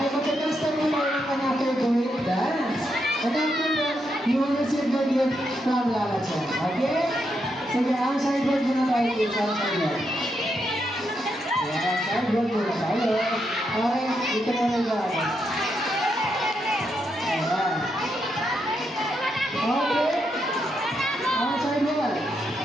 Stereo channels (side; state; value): both; normal; correlation 0.81